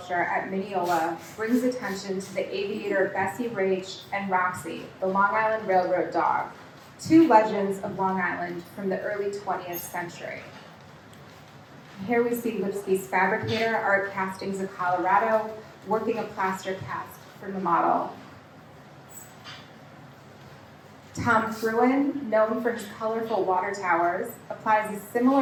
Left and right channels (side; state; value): both; identical; correlation 1.00